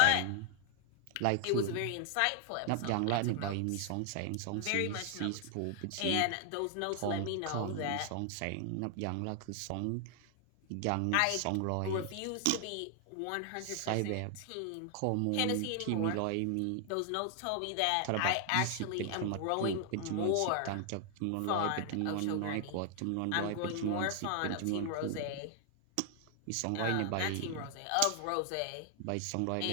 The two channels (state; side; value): different; both; correlation 0.00